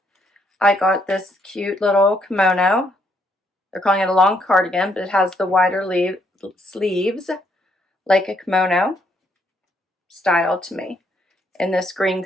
I got this cute little kimono. They're calling it a long cardigan, but it has the wider sleeves like a kimono style to me in this green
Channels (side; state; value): both; normal; correlation 0.72